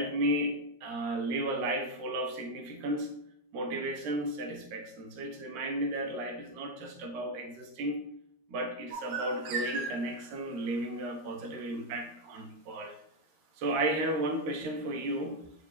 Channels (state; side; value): late; left; 13 ms